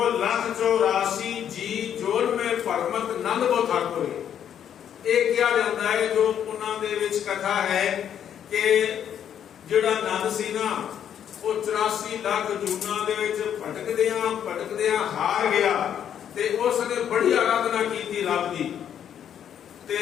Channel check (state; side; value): quieter; right; 9.3 dB